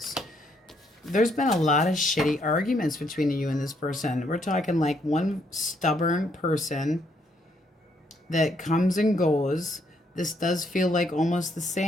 There's been a lot of shitty arguments between you and this person. We're talking like one stubborn person that comes and goes. This does feel like almost the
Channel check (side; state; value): both; normal; correlation 0.72